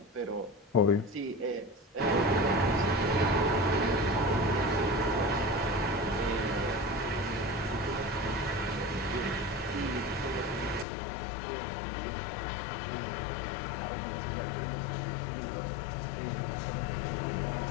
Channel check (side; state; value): right; drops out; at 10.9 s